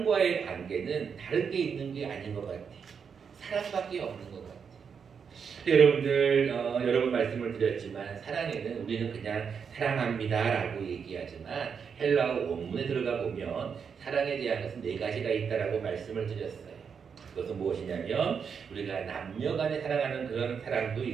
관계는 다른 게 있는 게 아닌 것 같아요. 사랑밖에 없는 것 같아요. 여러분들 여러 번 말씀을 드렸지만 사랑에는 우리는 그냥 사랑합니다 라고 얘기하지만 헬라어 원문에 들어가 보면 사랑에 대한 것은 4가지가 있다라고 말씀을 드렸어요. 그것은 무엇이냐면 우리가 남녀 간에 사랑하는 그런 사랑도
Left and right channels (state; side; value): quieter; left; 6.5 dB